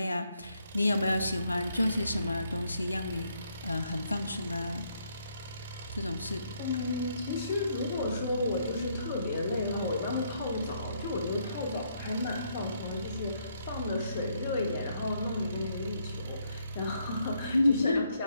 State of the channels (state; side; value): inverted; both; correlation -0.72